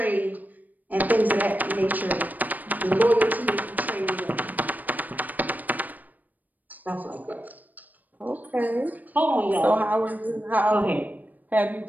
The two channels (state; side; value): late; left; 0.083 ms